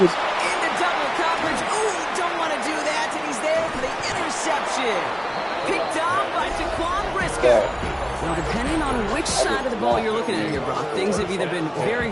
double coverage. Ooh, don't want to do that, and he's there for the interception. Picked off by Jaquan Briscoe. Well, depending on which side of the ball you're looking at here, Brock, things have either been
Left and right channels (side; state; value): both; identical; correlation 1.00